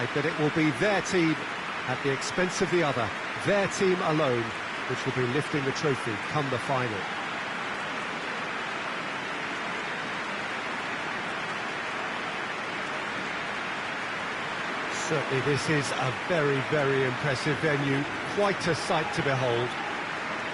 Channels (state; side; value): identical; both; correlation 1.00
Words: that it will be their team at the expense of the other, their team alone, which will be lifting the trophy come the final. Certainly this is a very, very impressive venue, quite a sight to behold.